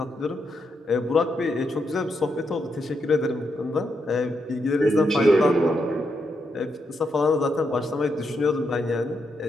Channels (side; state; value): both; normal; correlation 0.81